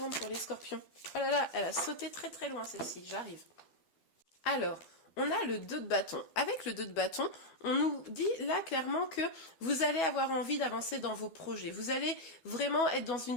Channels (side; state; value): right; late; 12 ms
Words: pour les scorpions. Oh là là, elle a sauté très très loin celle-ci, j'arrive. Alors, on a le 2 de bâton. Avec le 2 de bâton, on nous dit là clairement que vous allez avoir envie d'avancer dans vos projets. Vous allez vraiment être dans une